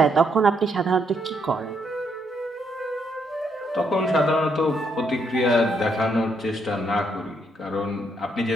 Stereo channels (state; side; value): normal; both; correlation 0.75